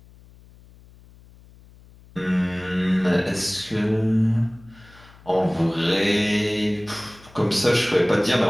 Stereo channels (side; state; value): left; noise; hum, 25 dB below the sound